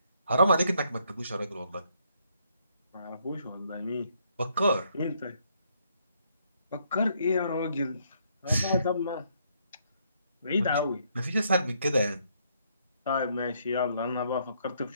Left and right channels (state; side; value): inverted; both; correlation -0.71